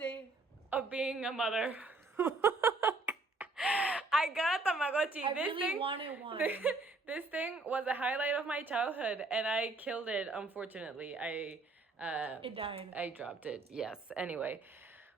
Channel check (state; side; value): quieter; left; 3.3 dB